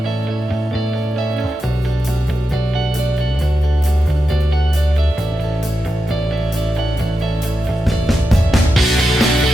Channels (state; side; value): normal; both; correlation 0.89